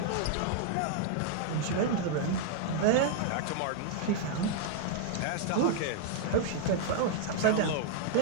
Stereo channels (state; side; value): different; both; correlation -0.01